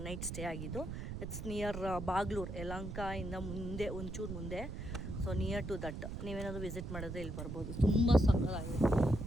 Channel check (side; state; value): right; noise; rumble, 6 dB below the sound